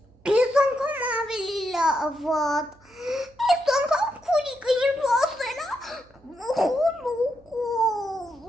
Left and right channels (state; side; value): noise; right; hum, 30 dB below the sound